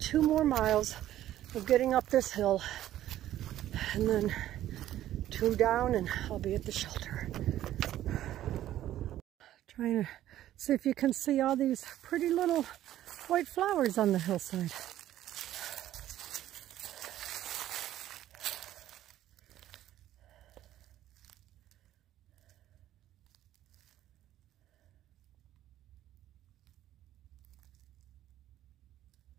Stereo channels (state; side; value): quieter; left; 12.9 dB